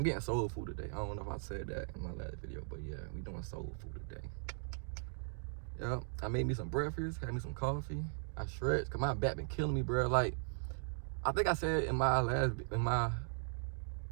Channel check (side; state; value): left; silent; digital silence